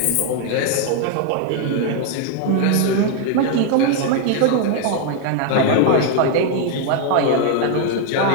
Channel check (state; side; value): different; both; correlation 0.00